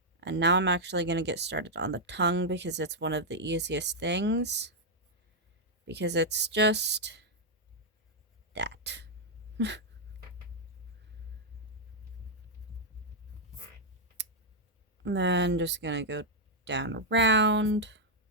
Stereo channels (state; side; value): normal; both; correlation -0.04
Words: And now I'm actually gonna get started on the tongue, because it's one of the easiest things, because it's just that. And then just gonna go down around.